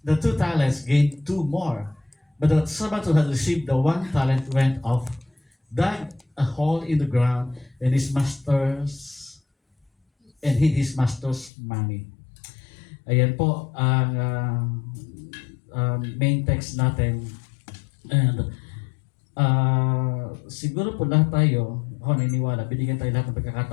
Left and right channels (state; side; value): drops out; right; at 11.5 s